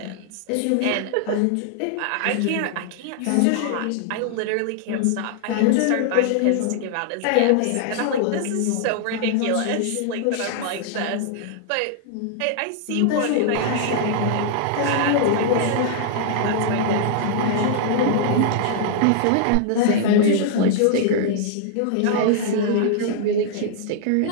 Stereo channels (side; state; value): both; different; correlation -0.01